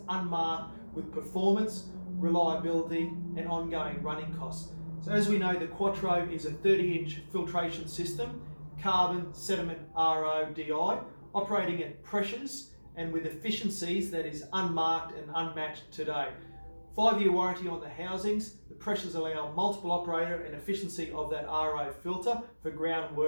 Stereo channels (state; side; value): inverted; both; correlation -1.00